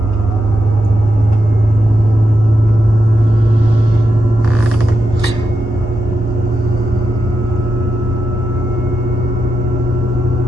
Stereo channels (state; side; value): normal; both; correlation 0.86